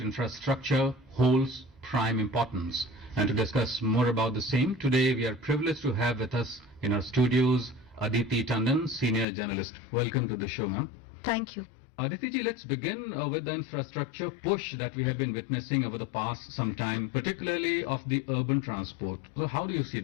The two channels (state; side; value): drops out; right; at 9.2 s